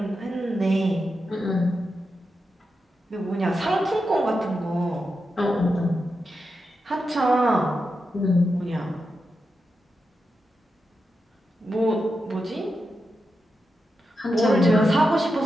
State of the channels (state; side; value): normal; both; correlation 0.88